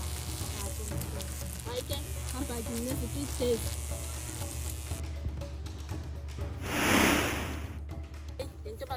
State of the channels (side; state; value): both; identical; correlation 1.00